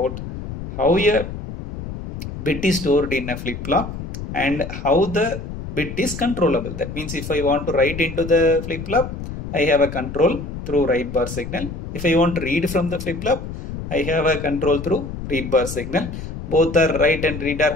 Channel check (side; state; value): left; noise; rumble, 8 dB below the sound